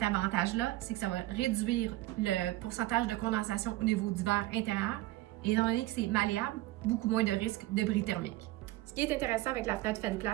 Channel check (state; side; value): quieter; left; 17.6 dB